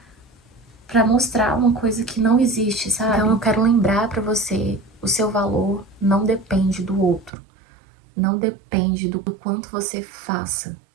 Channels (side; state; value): left; drops out; at 7.3 s